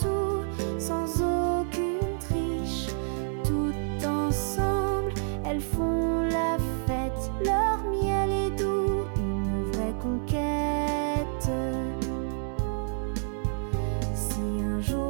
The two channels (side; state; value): left; silent; 59 dB below the other